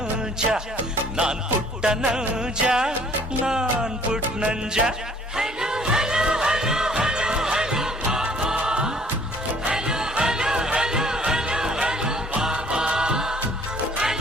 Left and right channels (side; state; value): both; normal; correlation 0.57